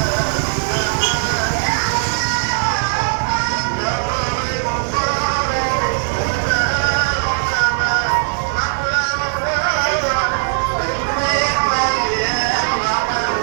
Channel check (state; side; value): silent; left; 62 dB below the other